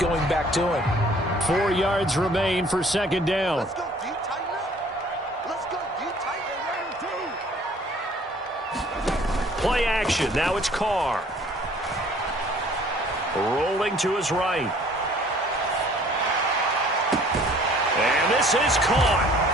back to him. 4 yards remain for 2nd down. Let's go, D, tighten up. Let's go, D, tighten up. Play action. Now it's Carr. Rolling to his right. And this is caught.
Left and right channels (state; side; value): normal; both; correlation 0.55